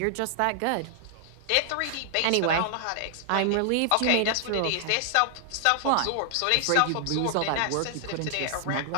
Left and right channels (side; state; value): both; different; correlation 0.00